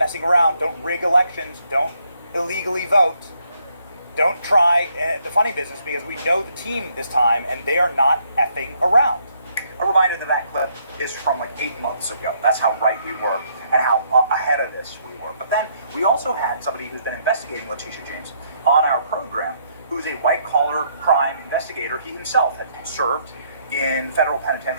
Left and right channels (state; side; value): inverted; both; correlation -0.70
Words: around. Don't rig elections. Don't illegally vote. Don't try the funny business, because we know the team this time and they are not effing around. A reminder that clip is from like 8 months ago. That's how right we were and how ahead of this we were. But then we also had somebody who's been investigating Letitia James on our program, who's a white-collar crime investigator. He himself had served in federal